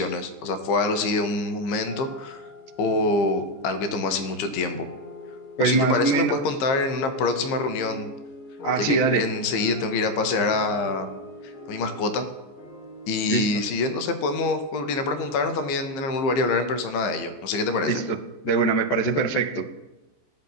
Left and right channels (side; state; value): right; late; 15 ms